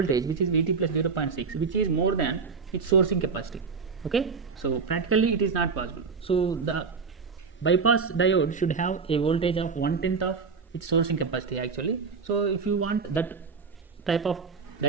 which is Vt plus 0.6, which is more than its sourcing capacity. Okay, so practically it is not possible. So the bypass diode should have a voltage of 1/10 of its sourcing capacity actually. So if you want that type of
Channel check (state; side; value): quieter; left; 5.1 dB